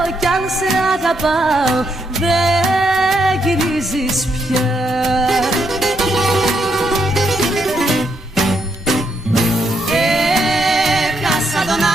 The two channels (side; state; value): both; normal; correlation 0.77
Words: κι αν σε αγαπάω, δεν γυρίζεις πια. Έχασα τον